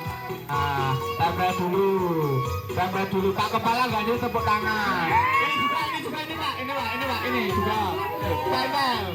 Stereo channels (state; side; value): identical; both; correlation 1.00